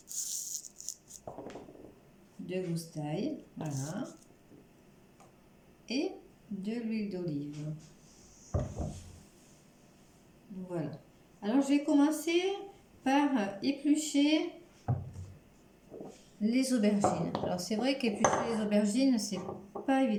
voilà, et de l'huile d'olive. Voilà. Alors je vais commencer par éplucher les aubergines. Alors c'est vrai qu'éplucher les aubergines, c'est pas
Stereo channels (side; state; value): both; identical; correlation 1.00